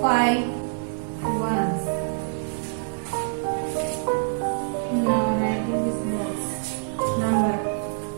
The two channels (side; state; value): left; silent; digital silence